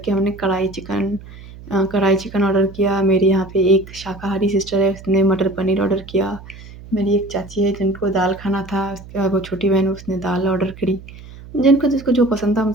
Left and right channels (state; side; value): noise; right; hum, 17 dB below the sound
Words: हमने कढ़ाई चिकन ऑर्डर किया। मेरे यहाँ पे एक शाकाहारी सिस्टर है, उसने मटर पनीर ऑर्डर किया। मेरी एक चाची है जिनको दाल खाना था, उसके बाद वो छोटी बहन, उसने दाल ऑर्डर करी। जिनको जिसको जो पसंद था, हम